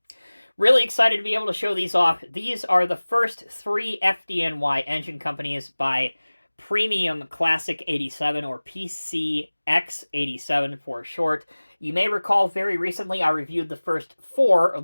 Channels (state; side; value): inverted; both; correlation -1.00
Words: Really excited to be able to show these off. These are the first three FDNY engine companies by Premium ClassiXXs, or PCX87 for short. You may recall very recently I reviewed the first four